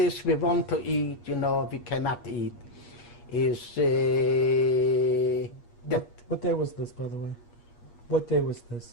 we want to eat, you know, we cannot eat. What day was this, by the way? What day was this?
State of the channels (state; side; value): late; right; 8.4 ms